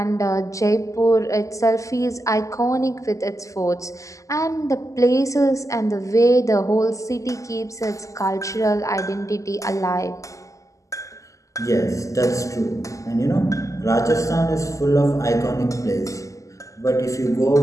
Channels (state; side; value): late; right; 0.16 ms